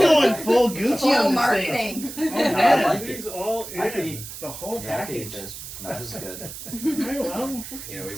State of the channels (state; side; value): noise; right; hiss, 11 dB below the sound